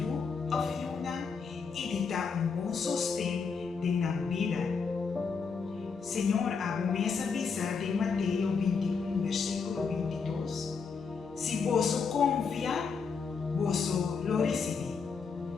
ofertar e de dar bom sustento na vida. Senhor, a promessa avisar de Mateus 21, versículo 22. Se vosso confiar, vosso lo recebi.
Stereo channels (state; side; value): quieter; right; 5.4 dB